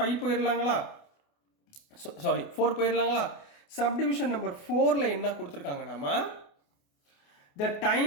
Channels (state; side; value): late; right; 28 ms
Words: போயிடலாங்களா? சாரி 4 போயிடலாங்களா? சப்டிவிஷன் நம்பர் 4ல என்ன கொடுத்துருக்காங்க, நம்ம the